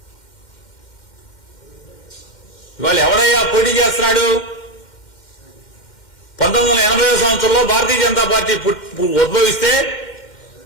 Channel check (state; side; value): late; right; 2.1 ms